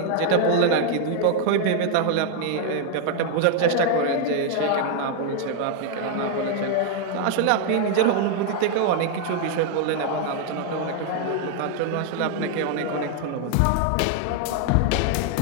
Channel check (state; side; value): different; both; correlation 0.00